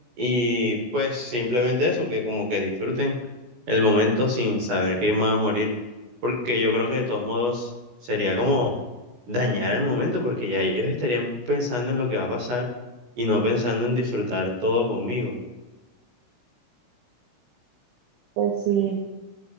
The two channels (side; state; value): left; late; 16 ms